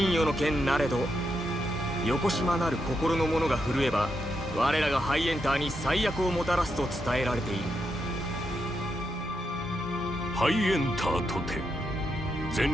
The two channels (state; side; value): normal; both; correlation 0.83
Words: 与の剣なれど、横島なる心の者が震えば我らがハイエンターに最悪をもたらすと伝えられている。ハイエンターとて